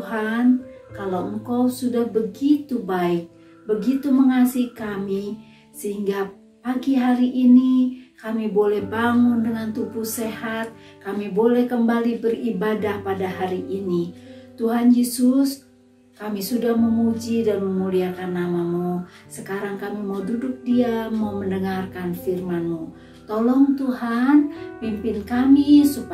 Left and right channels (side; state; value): both; identical; correlation 1.00